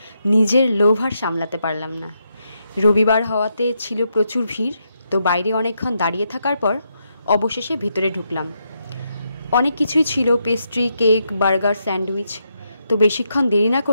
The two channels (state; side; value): inverted; both; correlation -0.81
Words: নিজের লোভ আর সামলাতে পারলাম না। রবিবার হওয়াতে ছিল প্রচুর ভিড়, তো বাইরে অনেকক্ষণ দাঁড়িয়ে থাকার পর অবশেষে ভেতরে ঢুকলাম। অনেক কিছুই ছিল, পেস্ট্রি, কেক, বার্গার, স্যান্ডউইচ। তো বেশিক্ষণ দেরি না